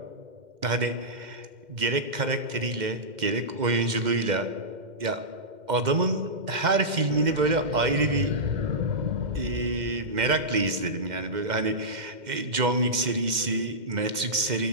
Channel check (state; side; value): late; left; 2.1 ms